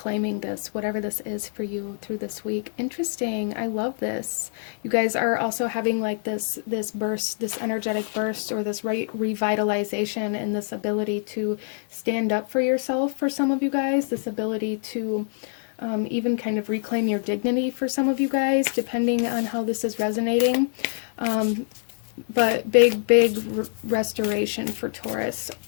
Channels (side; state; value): right; silent; digital silence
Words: this, whatever this is for you through this week. Interesting. I love this. You guys are also having like this burst, this energetic burst, or this revitalization, and this ability to stand up for yourself for some of you guys, this ability to even kind of reclaim your dignity for some of you guys, depending on how this is resonating. But big restoration for Taurus